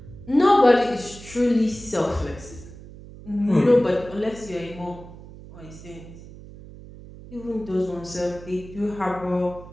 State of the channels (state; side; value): noise; right; hum, 17 dB below the sound